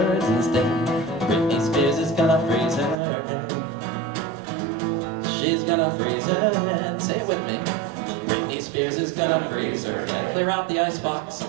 instead. Britney Spears is gonna freeze her head. She's gonna freeze her head. Say it with me. Britney Spears is gonna freeze her head. Clear out the icebox.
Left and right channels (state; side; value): drops out; left; at 3.0 s